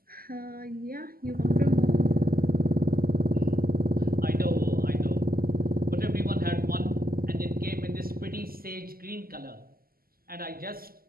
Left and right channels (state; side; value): late; left; 0.42 ms